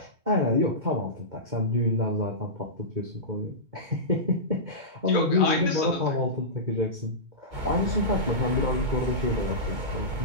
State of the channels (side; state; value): left; late; 2.2 ms